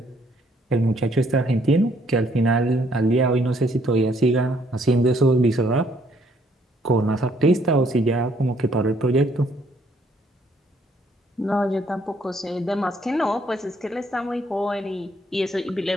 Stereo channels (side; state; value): both; normal; correlation 0.67